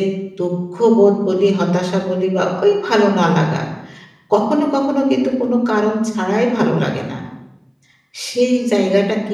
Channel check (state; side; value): identical; both; correlation 1.00